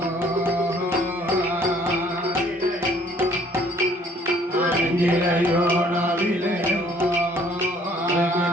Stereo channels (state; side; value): normal; both; correlation 0.60